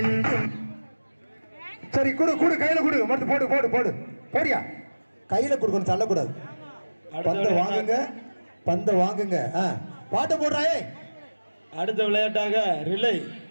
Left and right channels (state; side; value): inverted; both; correlation -1.00